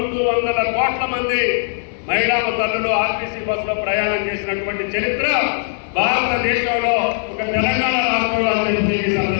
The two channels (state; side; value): silent; right; 58 dB below the other